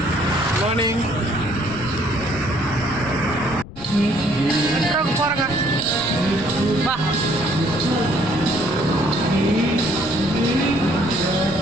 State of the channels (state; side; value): noise; left; rumble, 14 dB below the sound